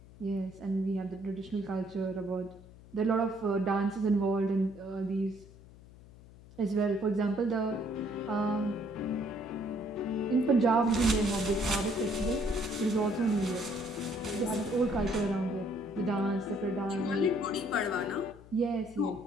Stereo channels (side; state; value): left; noise; hum, 21 dB below the sound